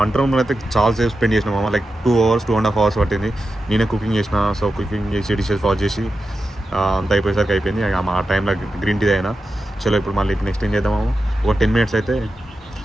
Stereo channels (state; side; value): normal; both; correlation 0.90